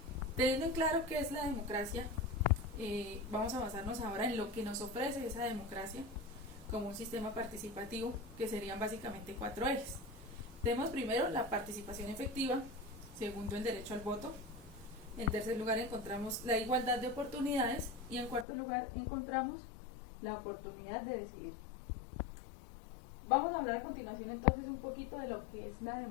Teniendo en claro qué es la democracia, vamos a basarnos ahora en lo que nos ofrece esa democracia como un sistema participativo, que serían básicamente 4 ejes. Tenemos primero la participación efectiva, segundo el derecho al voto, en tercer lugar encontramos la igualdad de oportunidades y en cuarto lugar encontramos la oportunidad de decidir. Vamos a hablar a continuación entonces un poquito de lo que es la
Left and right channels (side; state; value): right; drops out; at 18.4 s